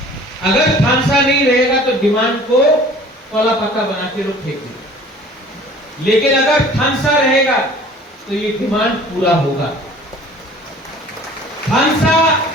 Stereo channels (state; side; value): normal; both; correlation 0.48